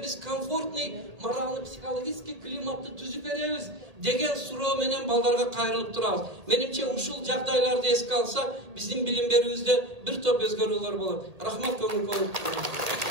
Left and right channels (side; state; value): left; late; 1.8 ms